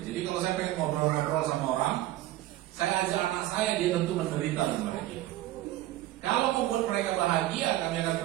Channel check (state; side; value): quieter; left; 15.2 dB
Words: jadi kalau saya pengen ngobrol-ngobrol sama orang, saya ajak anak saya, dia tentu menderita dan bahagia. Kalau membuat mereka bahagia, kami akan